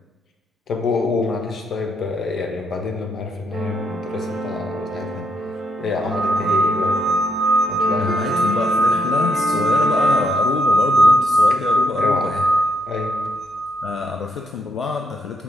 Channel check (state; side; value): normal; both; correlation 0.76